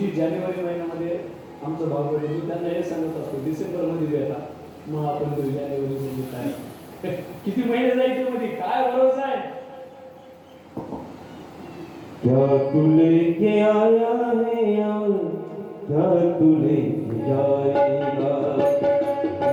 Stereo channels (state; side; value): identical; both; correlation 1.00